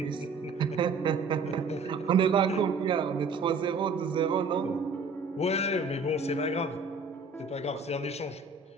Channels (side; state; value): left; quieter; 4.2 dB